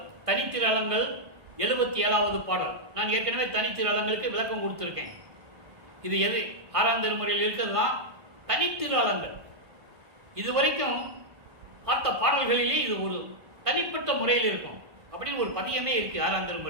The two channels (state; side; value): late; left; 1.5 ms